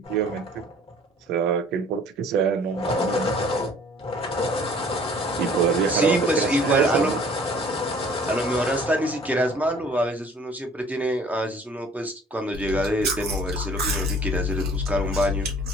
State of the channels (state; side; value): normal; both; correlation 0.53